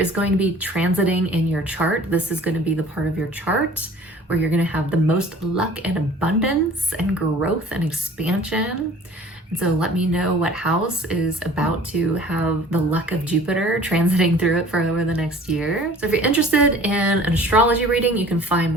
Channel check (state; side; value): normal; both; correlation 0.48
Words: going to be transiting in your chart. This is going to be the part of your chart where you're going to have the most luck and abundance and growth and expansion. And so let me know what house is about to have the luck of Jupiter transiting through it for over the next year. So if you're interested in an astrology reading, you can find